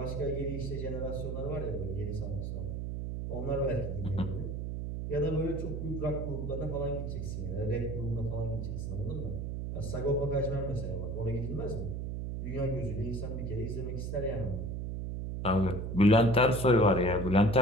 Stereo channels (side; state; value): right; noise; hum, 4 dB below the sound